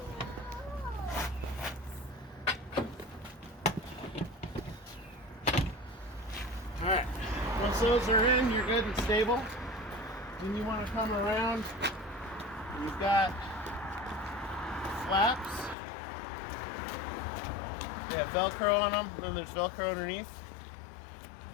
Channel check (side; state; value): right; drops out; at 15.8 s